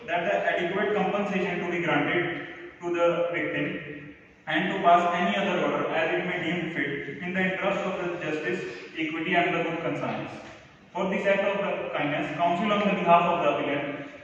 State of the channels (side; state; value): both; identical; correlation 1.00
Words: that the adequate compensation to be granted to the victim, and to pass any other order as it may deem fit in the interest of the justice, equity, and the good conscience. For this act of the kindness, Council on the behalf of the appellant